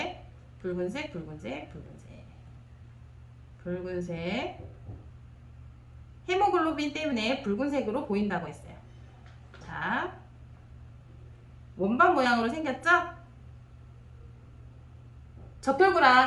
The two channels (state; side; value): identical; both; correlation 1.00